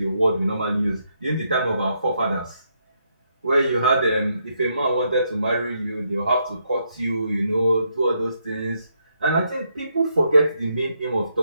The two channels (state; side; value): inverted; both; correlation -0.77